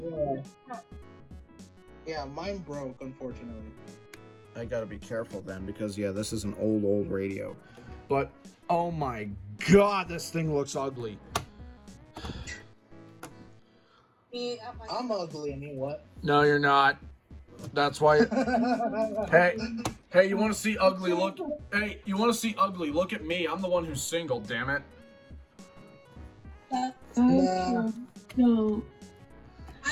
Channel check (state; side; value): identical; both; correlation 1.00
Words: Yeah, mine broke, unfortunately. I gotta be careful then, because yeah, this is an old radio. But, oh my god, this thing looks ugly. I'm ugly, I mean, what? No, you're not. That's why. Hey, you want to see ugly? Look. Hey, you want to see ugly? Look at me. I'm the one who's single. Damn it. Nah. No.